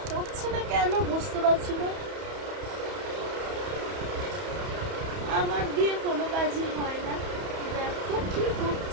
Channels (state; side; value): late; left; 31 ms